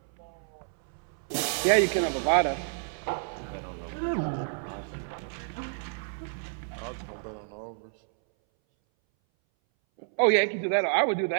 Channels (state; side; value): silent; left; 58 dB below the other